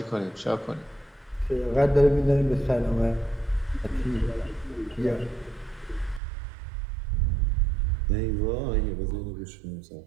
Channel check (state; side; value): drops out; left; at 6.2 s